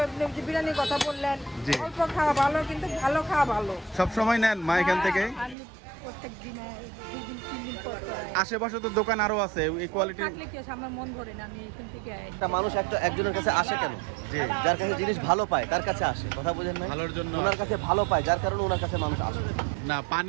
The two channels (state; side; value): drops out; left; at 5.6 s